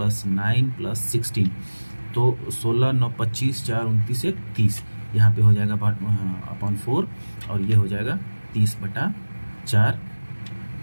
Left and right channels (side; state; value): both; inverted; correlation -1.00